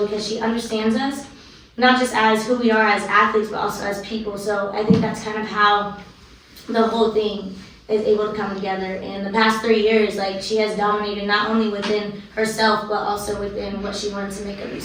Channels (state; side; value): identical; both; correlation 1.00